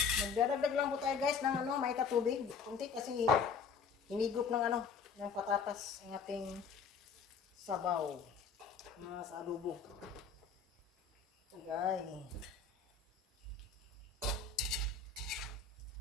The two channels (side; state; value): right; quieter; 5.7 dB